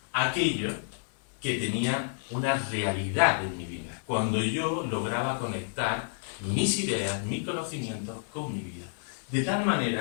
aquello que tenía una realidad en mi vida, cuando yo lograba conectar mis ideas, mis conocimientos con mi vida. De tal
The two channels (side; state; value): right; silent; 58 dB below the other